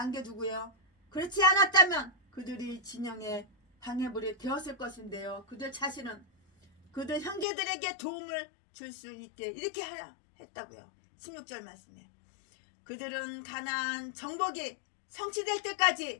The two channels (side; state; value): right; drops out; at 7.5 s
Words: 그렇지 않았다면 그들이 진영의 방해물이 되었을 것인데요. 그들 자신은 그들 형제들에게 도움을 줄 수 있게 이렇게 했다고요. 16절 말씀에 그들은 가나안 정복이 성취될